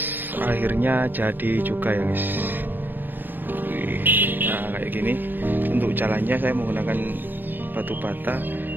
akhirnya jadi juga ya guys. Wih, nah kayak gini. Untuk jalannya saya menggunakan batu bata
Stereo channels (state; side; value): late; left; 0.093 ms